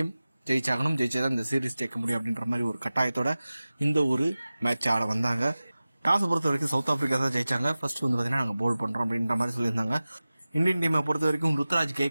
ஜெயிச்சாகணும். ஜெயிச்சாதான் இந்த சீரீஸ் ஜெயிக்க முடியும் அப்படின்ற மாதிரி ஒரு கட்டாயத்தோட இந்த ஒரு மேட்ச் ஆட வந்தாங்க. டாஸை பொறுத்த வரைக்கும் சவுத் ஆப்பிரிக்கா தான் ஜெயிச்சாங்க. ஃபர்ஸ்ட் வந்து பார்த்தீங்கன்னா நாங்கள் போல் பண்றோம் அப்படின்ற மாதிரி சொல்லியிருந்தாங்க. இந்தியன் டீமை பொறுத்த வரைக்கும் ருத்ராஜ்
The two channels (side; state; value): both; inverted; correlation -0.97